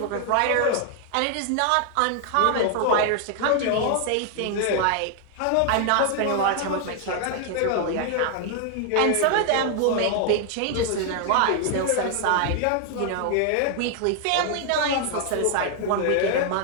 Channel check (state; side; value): different; both; correlation 0.00